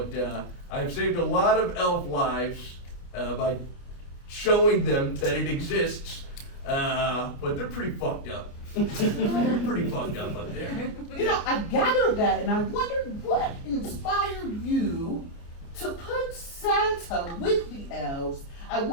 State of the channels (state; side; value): late; right; 29 ms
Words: I've saved a lot of elf lives by showing them that it exists. But they're pretty fucked up. They're pretty fucked up there. You know, I gathered that, and I wondered what inspired you to put Santa with the elves. I